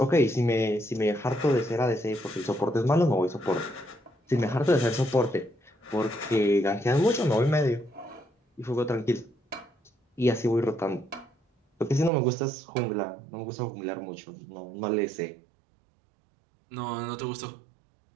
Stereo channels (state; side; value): drops out; left; at 12.1 s